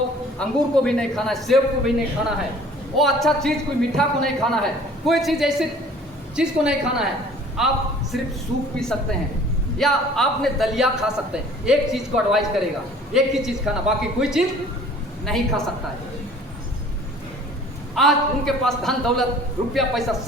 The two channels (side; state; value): both; normal; correlation 0.51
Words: अंगूर को भी नहीं खाना है, सेब को भी नहीं खाना है, वो अच्छा चीज कोई मीठा को नहीं खाना है, कोई चीज ऐसी चीज को नहीं खाना है, आप सिर्फ सूप पी सकते हैं या आपने दलिया खा सकते हैं। एक चीज को एडवाइस करेगा, एक ही चीज खाना, बाकी कोई चीज नहीं खा सकता है। आज उनके पास धन दौलत रुपया पैसा